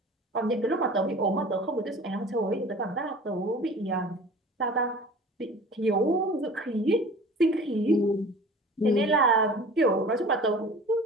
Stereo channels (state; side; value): normal; both; correlation 0.43